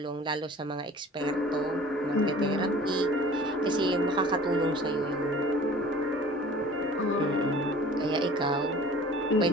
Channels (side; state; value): both; normal; correlation 0.46